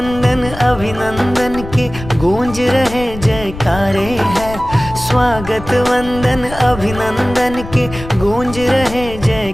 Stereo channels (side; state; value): left; noise; rumble, 12 dB below the sound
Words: अभिनंदन के गूंज रहे जयकारे हैं। स्वागत वंदन अभिनंदन के गूंज रहे